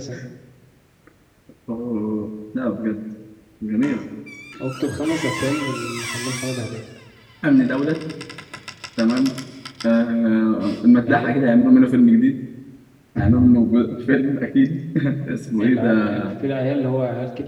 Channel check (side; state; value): both; identical; correlation 1.00